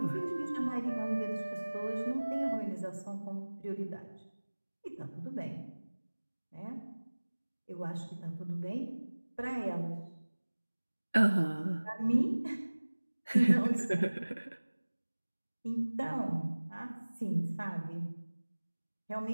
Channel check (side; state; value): both; inverted; correlation -1.00